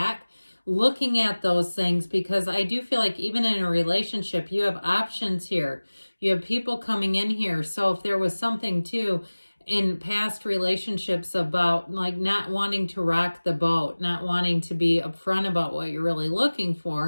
looking at those things, because I do feel like even in a relationship, you have options here. You have people coming in here. So if there was something too in past relationships about like not wanting to rock the boat, not wanting to be upfront about what you're really looking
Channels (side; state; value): both; inverted; correlation -1.00